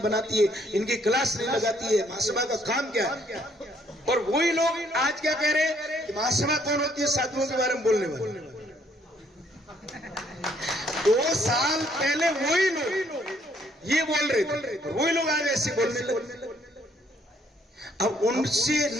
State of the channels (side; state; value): both; normal; correlation 0.67